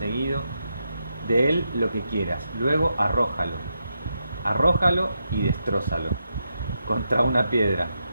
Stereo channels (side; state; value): both; inverted; correlation -0.84